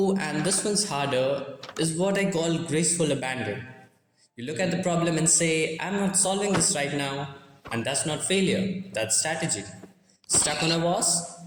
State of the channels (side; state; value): both; identical; correlation 1.00